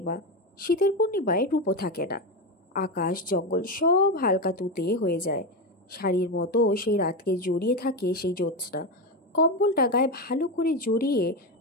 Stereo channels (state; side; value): normal; both; correlation 0.14